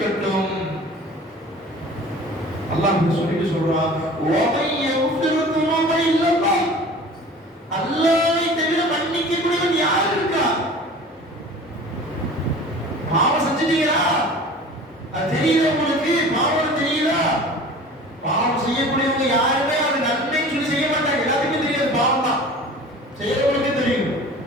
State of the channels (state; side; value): normal; both; correlation 0.41